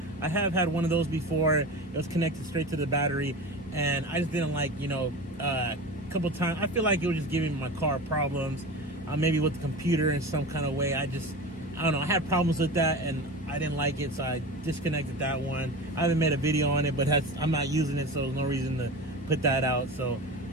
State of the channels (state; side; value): normal; both; correlation 0.29